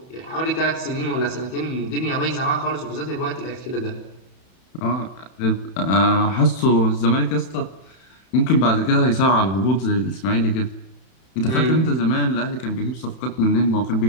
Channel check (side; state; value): right; late; 31 ms